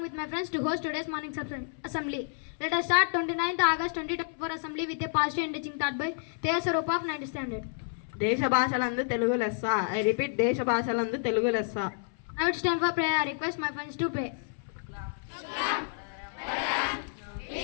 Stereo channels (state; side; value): silent; right; 58 dB below the other